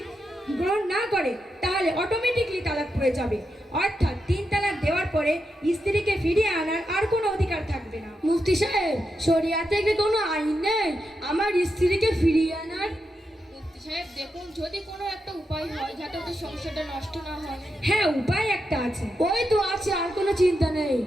গ্রহণ না করে তাহলে অটোমেটিকলি তালাক পড়ে যাবে, অর্থাৎ 3 তালাক দেওয়ার পরে স্ত্রীকে ফিরিয়ে আনার আর কোনো অধিকার থাকবে না। মুফতি সাহেব, শরিয়াতে কি কোনো আইন নেই আমার স্ত্রীকে ফিরিয়ে আনার? মুফতি সাহেব দেখুন, যদি কোনো একটা উপায় হয় যাতে ওদের সংসারটা নষ্ট না হয়। হ্যাঁ, উপায় একটা আছে। ওই তো আছে, আর কোনো চিন্তা নেই।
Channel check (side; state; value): both; normal; correlation 0.86